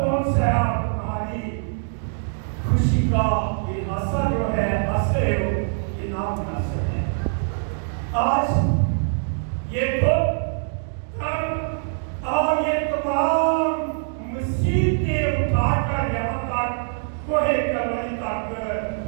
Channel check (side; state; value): left; silent; digital silence